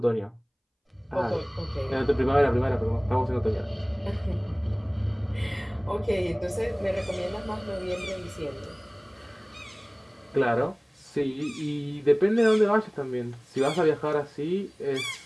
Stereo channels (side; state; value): both; identical; correlation 1.00